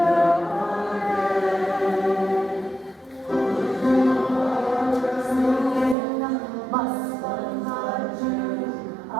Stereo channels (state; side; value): drops out; left; at 6.0 s